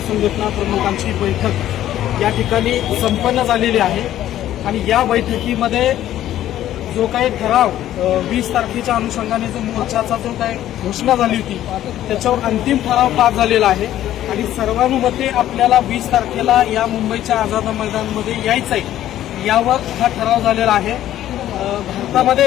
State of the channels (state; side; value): quieter; right; 12.6 dB